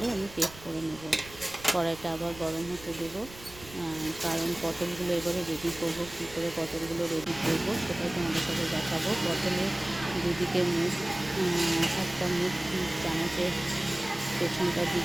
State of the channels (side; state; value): right; noise; rumble, 18 dB below the sound